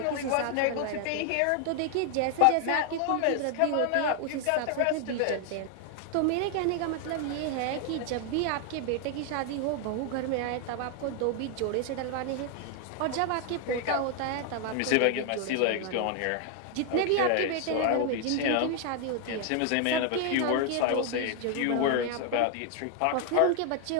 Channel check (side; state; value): both; different; correlation 0.00